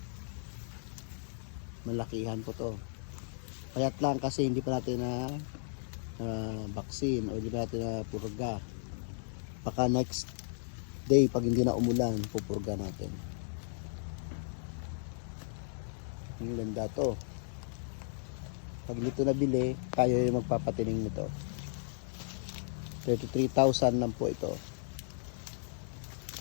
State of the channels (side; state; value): right; silent; digital silence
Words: Malakihan po to. Payat lang kasi hindi pa natin na vaccine o hindi pa natin na purga. Baka next day pag hindi na umulan, pupurga natin. Ang ganda to. Pag dito nabili, tayo yung magpapatining nito. 33,000 lang po ito.